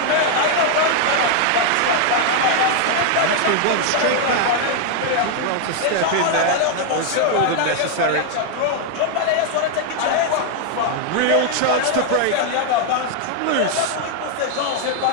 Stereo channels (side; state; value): both; different; correlation 0.00